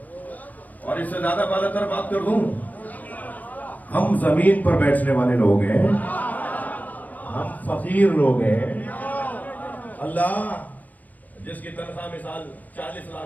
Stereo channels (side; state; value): right; late; 0.080 ms